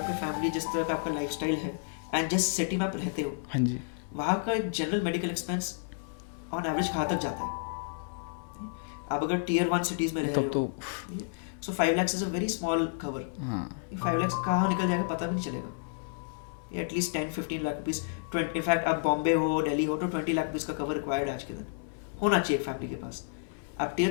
फैमिली जिस तरह का आपका लाइफस्टाइल है एंड जिस सिटी में आप रहते हो, हाँ जी, वहाँ का एक general medical expense on average कहाँ तक जाता है। आप अगर टियर 1 सिटीज़ में रह रहे हो सो 5 lakhs is a very small cover. 5 lakhs कहाँ निकल जाएगा पता भी नहीं चलेगा। एटलीस्ट 10-15 लाख रुपीज़, इनफैक्ट आप बॉम्बे हो, दिल्ली हो, तो 20 लाख रुपीज़ का कवर रिक्वायर्ड आज के दिन होना चाहिए एक फैमिली के पास। आप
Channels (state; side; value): silent; right; 57 dB below the other